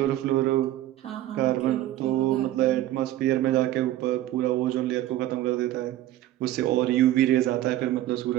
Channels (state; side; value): quieter; left; 14.0 dB